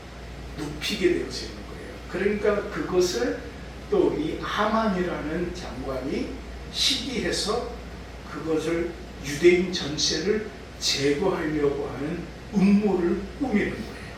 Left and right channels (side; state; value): both; identical; correlation 1.00